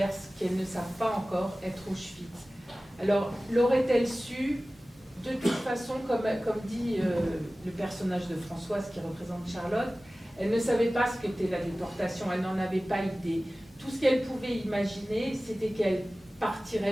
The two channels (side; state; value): both; normal; correlation 0.97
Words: ce qu'elles ne savent pas encore être Auschwitz. Alors, l'aurait-elle su? De toute façon, comme dit le personnage de Françoise qui représente Charlotte, elle ne savait pas ce qu'était la déportation, elle n'en avait pas idée. Tout ce qu'elle pouvait imaginer, c'était qu'elle